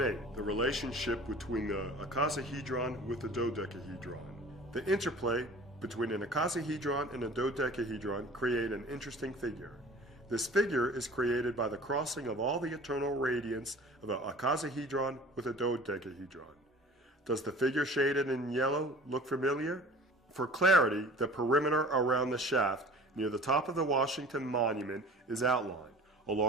8. The relationship between the icosahedron with the dodecahedron. The interplay between an icosahedron and a dodecahedron create an interesting figure. This figure is created by the crossing of all the eternal radiance of an icosahedron with a dodecahedron. Does the figure shaded in yellow look familiar? For clarity, the perimeter around the shaft near the top of the Washington Monument is outlined,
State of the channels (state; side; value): normal; both; correlation 0.44